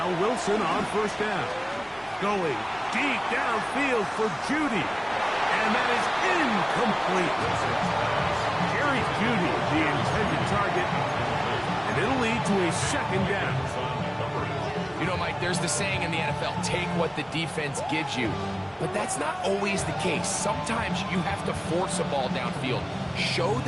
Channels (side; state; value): both; identical; correlation 1.00